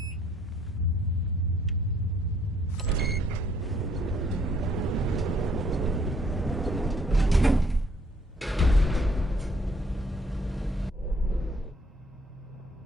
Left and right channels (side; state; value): both; normal; correlation 0.65